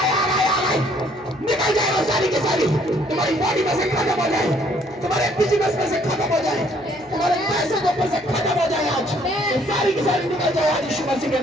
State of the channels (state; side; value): noise; right; hum, 28 dB below the sound